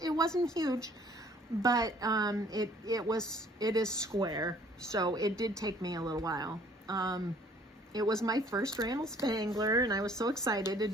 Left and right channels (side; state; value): both; normal; correlation 0.57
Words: It wasn't huge, but it is square, so it did take me a little while. It was my first Randall Spangler, and I was so excited to